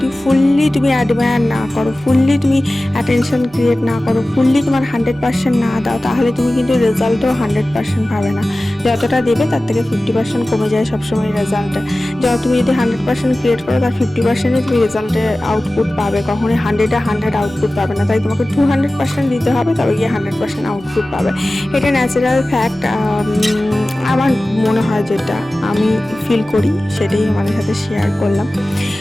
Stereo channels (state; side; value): noise; right; hum, 27 dB below the sound